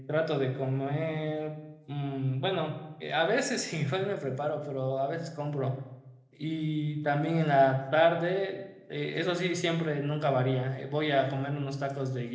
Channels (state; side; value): identical; both; correlation 1.00